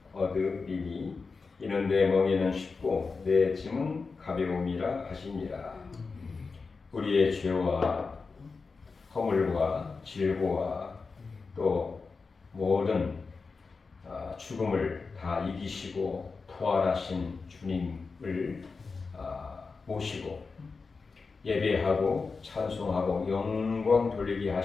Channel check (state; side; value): quieter; right; 4.5 dB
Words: 얻으리니 이는 내 멍에는 쉽고 내 짐은 가벼움이라 하시니라. 우리의 죄와 허물과 질고와 또 모든 죽음을 다 이기시고 부활하신 주님을 모시고 예배하고 찬송하고 영광 돌리게